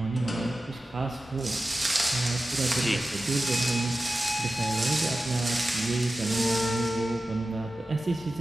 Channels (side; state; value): both; normal; correlation 0.94